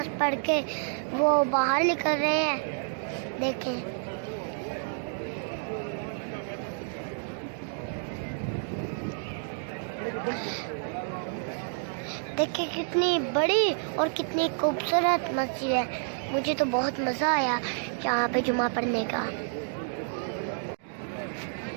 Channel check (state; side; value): silent; left; digital silence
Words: पढ़ के वो बाहर निकल रहे हैं। देखें देखें कितनी बड़ी और कितनी खूबसूरत मस्जिद है। मुझे तो बहुत मज़ा आया यहाँ पे जुमा पढ़ने का।